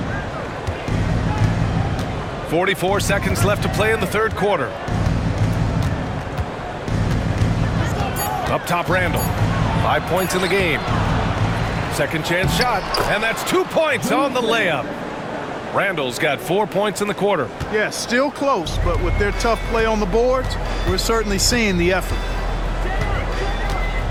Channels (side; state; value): both; identical; correlation 1.00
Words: 44 seconds left to play in the third quarter. Up top, Randall. 5 points in the game. Second chance shot, and that's 2 points on the layup. Randall's got 4 points in the quarter. Yeah, still close, but with their tough play on the boards, we're certainly seeing the effort.